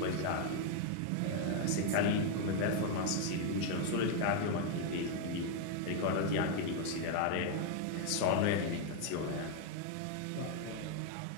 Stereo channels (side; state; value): both; different; correlation 0.01